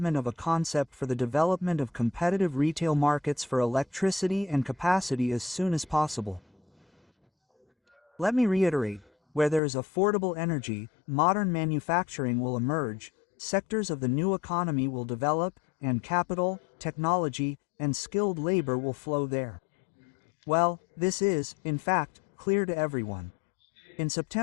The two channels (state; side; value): drops out; right; at 9.6 s